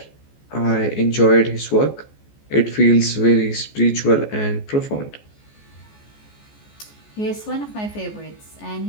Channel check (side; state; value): right; late; 14 ms